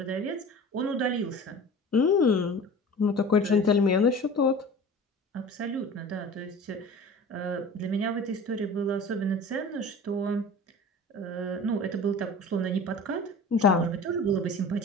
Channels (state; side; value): normal; both; correlation 0.39